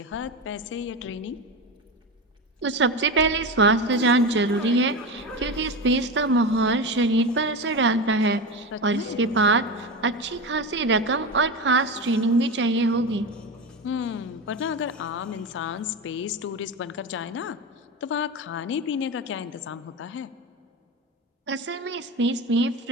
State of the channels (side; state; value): both; normal; correlation 0.22